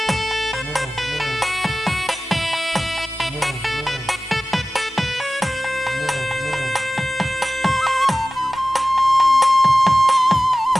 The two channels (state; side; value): normal; both; correlation 0.96